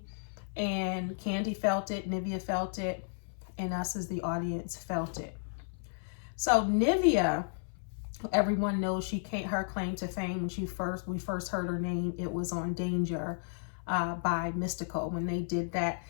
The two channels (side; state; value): right; silent; 56 dB below the other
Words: and Kandi felt it, Nivea felt it, and us as the audience felt it. So Nivea, everyone knows her claim to fame when we first heard her name. It was on Danger by Mystical when they did that